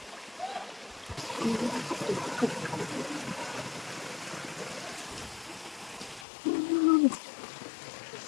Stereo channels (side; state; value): right; drops out; at 6.2 s